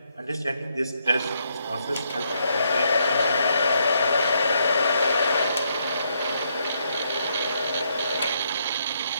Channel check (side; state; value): both; inverted; correlation -0.75